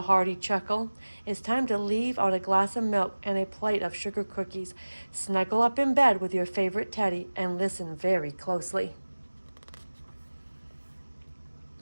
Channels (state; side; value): inverted; both; correlation -1.00